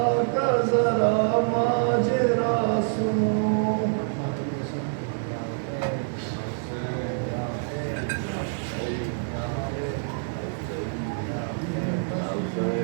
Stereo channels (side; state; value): left; silent; digital silence